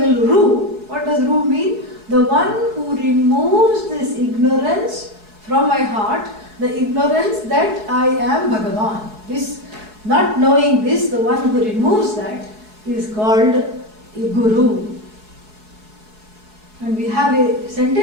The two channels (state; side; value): late; left; 4.7 ms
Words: Ru, what does Ru mean? The one who removes this ignorance from my heart, the ignorance that I am Bhagavan. This, not knowing this, the one who removes that is called a Guru. And we have a